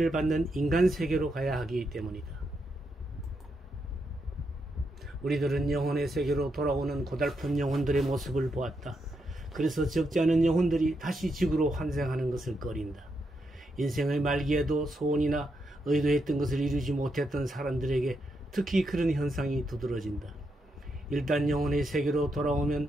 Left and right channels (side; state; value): both; normal; correlation 0.82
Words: 받는 인간 세계로 가야 하기 때문이다. 우리들은 영혼의 세계로 돌아오는 고달픈 영혼들의 모습을 보았다. 그래서 적지 않은 영혼들이 다시 지구로 환생하는 것을 꺼린다. 인생의 말기에도 소원이나 의도했던 것을 이루지 못했던 사람들에게 특히 그런 현상이 두드러진다. 일단 영혼의 세계로 돌아오면